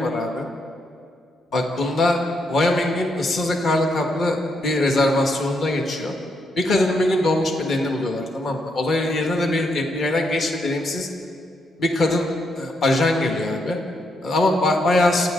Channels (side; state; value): both; normal; correlation 0.78